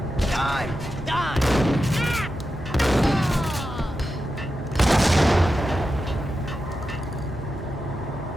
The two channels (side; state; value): both; normal; correlation 0.90